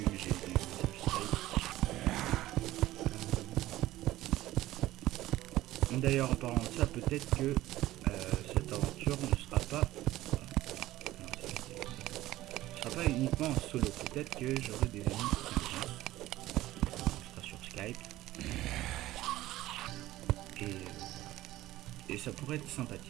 D'ailleurs, en parlant de ça, peut-être que cette aventure ne sera pas... non, ce sera pas uniquement en solo. Peut-être que j'aurai des amis qui viendront. On sera sur Skype. Et ça pourrait être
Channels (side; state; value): left; quieter; 15.9 dB